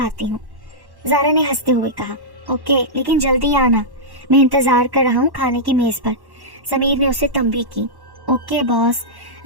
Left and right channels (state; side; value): late; left; 1.1 ms